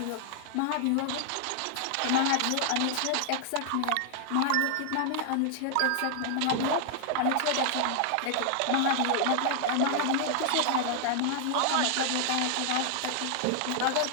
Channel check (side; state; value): both; different; correlation 0.00